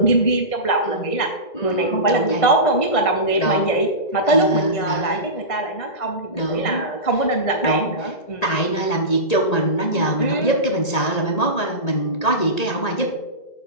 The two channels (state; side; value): late; right; 1.8 ms